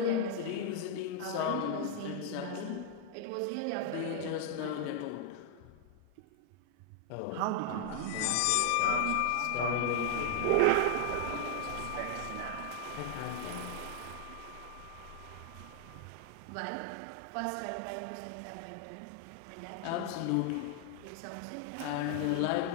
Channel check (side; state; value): both; different; correlation 0.00